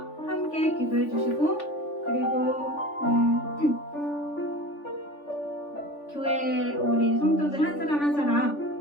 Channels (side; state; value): right; late; 3.5 ms